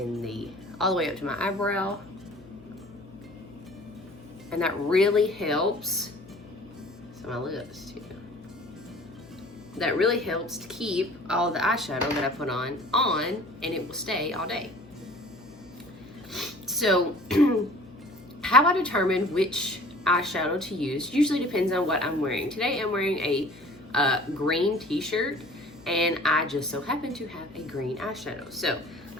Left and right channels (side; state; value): left; noise; hum, 22 dB below the sound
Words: all the way up to my eyebrow. And that really helps, so my lips too. That really helps to keep all the eyeshadow that I put on, and it will stay all day. So how I determine which eyeshadow to use usually depends on what I'm wearing. Today I'm wearing a green t-shirt, and I just so happen to have a green eyeshadow. So